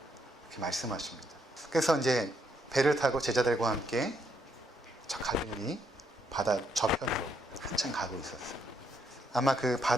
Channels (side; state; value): both; normal; correlation 0.75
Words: 이렇게 말씀하십니다. 그래서 이제 배를 타고 제자들과 함께 저 갈릴리 바다 저편으로 한참 가고 있었어요. 아마 그